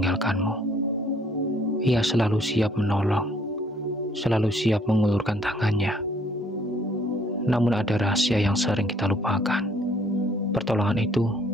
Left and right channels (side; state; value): both; normal; correlation 0.62